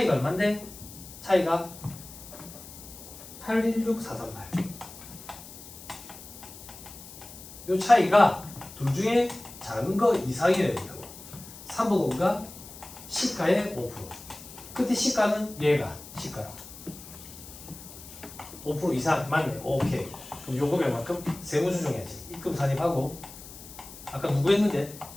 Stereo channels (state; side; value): noise; left; hiss, 16 dB below the sound